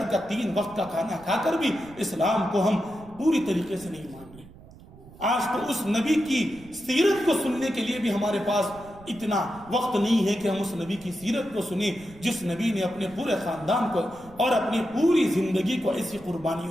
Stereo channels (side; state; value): right; noise; rumble, 20 dB below the sound